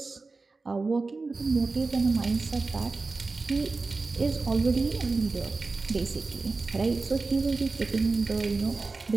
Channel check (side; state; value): left; quieter; 3.8 dB